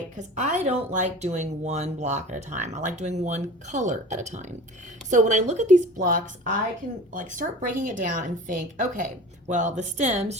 Because I don't like doing one block at a time. I like doing one color at a time. So when I look at these blocks, I can like start breaking it down and think, okay, well, the stems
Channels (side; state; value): both; normal; correlation 0.39